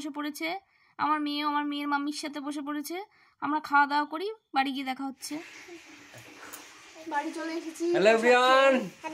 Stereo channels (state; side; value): identical; both; correlation 1.00